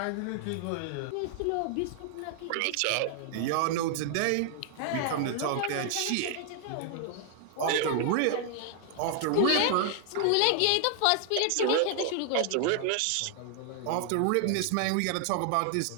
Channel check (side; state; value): both; different; correlation 0.00